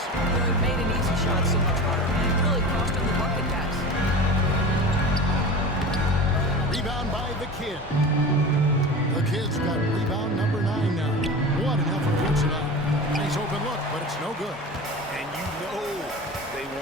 He made an easy shot so much harder, and it really cost him the bucket, guys. Rebound by the Kid. The Kid's got rebound number 9 now. What an effort here tonight. Nice open look, but it's no good. And you know they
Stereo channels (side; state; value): both; normal; correlation 0.32